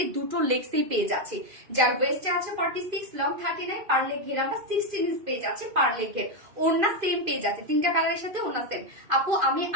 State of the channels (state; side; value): late; left; 2.5 ms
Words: দুটো লেগসেই পেয়ে যাচ্ছি। যার ওয়েস্টে আছে 46, লং 39, পার লেগ ঘের আমরা 16 ইঞ্চ পেয়ে যাচ্ছি পার লেগ ঘের। ওড়না সেম পেয়ে যাচ্ছে, 3টা কালারের সাথে ওড়না সেম। আপু আমি